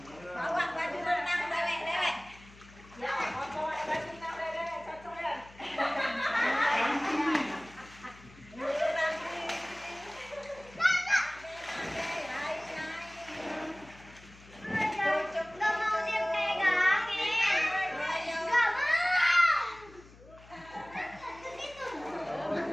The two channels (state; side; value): noise; left; hum, 22 dB below the sound